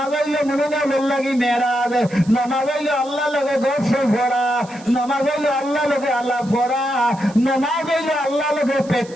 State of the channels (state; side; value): noise; right; hiss, 22 dB below the sound